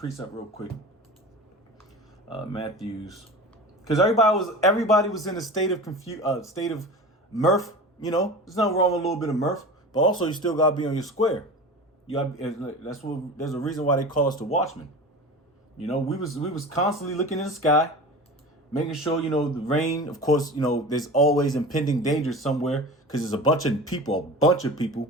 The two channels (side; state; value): both; normal; correlation 0.33